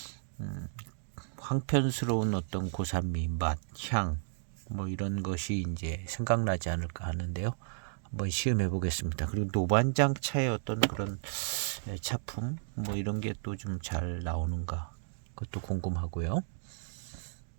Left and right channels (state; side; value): silent; left; digital silence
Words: 황편스러운 어떤 고산미, 맛, 향 뭐 이런 것이 이제 생각나지 않을까 하는데요. 한번 시음해 보겠습니다. 그리고 노반장 차의 어떤 그런 차품 뭐 이런 게 또 좀 잘 나오는가 그것도 궁금하고요.